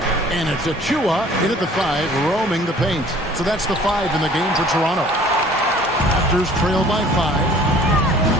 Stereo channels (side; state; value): both; normal; correlation 0.52